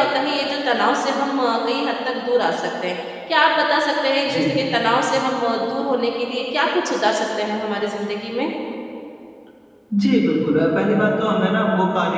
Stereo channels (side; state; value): both; identical; correlation 1.00